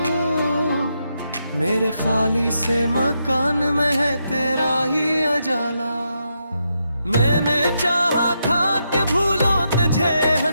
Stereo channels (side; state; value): both; inverted; correlation -0.82